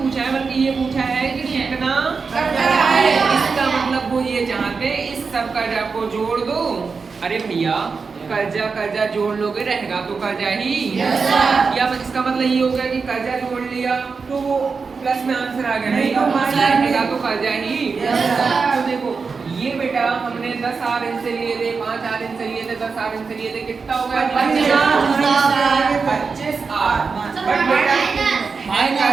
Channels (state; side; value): quieter; left; 4.9 dB